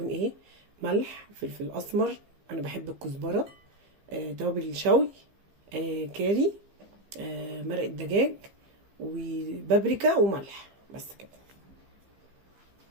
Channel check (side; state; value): left; late; 15 ms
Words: ايه؟ ملح، فلفل اسمر، انا بحب الكزبره، توابل الشوي، كاري، مرق الدجاج، وبابريكا وملح، بس كده.